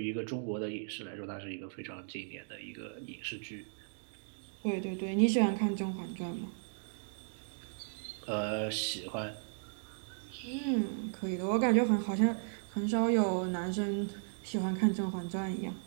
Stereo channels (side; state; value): left; silent; digital silence